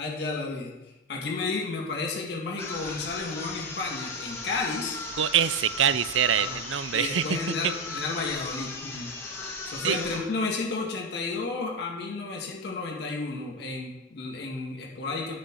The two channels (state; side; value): normal; both; correlation 0.11